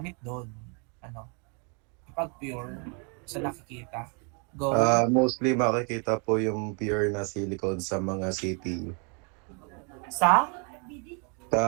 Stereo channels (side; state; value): left; quieter; 36.5 dB